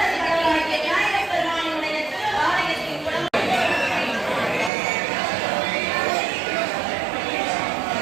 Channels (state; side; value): drops out; left; at 4.7 s